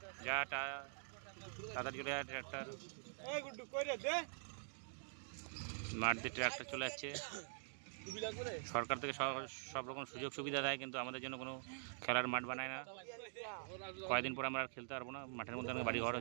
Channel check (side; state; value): left; silent; digital silence